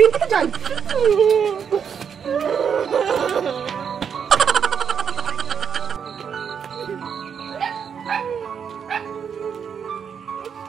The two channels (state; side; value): quieter; left; 7.2 dB